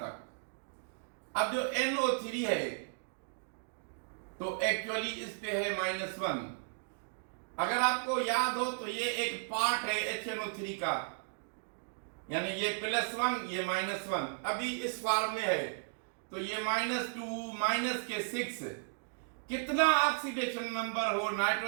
अब जो NO3 है तो एक्चुअली इस पे है -1। अगर आपको याद हो तो ये एक पार्ट है HNO3 का, यानी ये +1 ये -1 अभी इस फॉर्म में है, तो ये -2 के 6 कितना ऑक्सीडेशन नंबर हो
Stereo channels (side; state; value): left; silent; digital silence